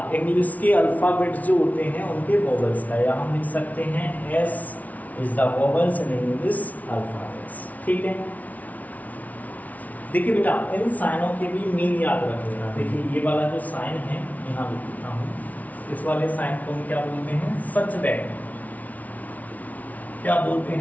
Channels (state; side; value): late; right; 0.072 ms